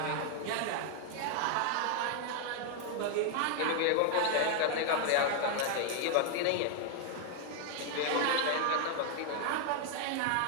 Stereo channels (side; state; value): both; different; correlation 0.00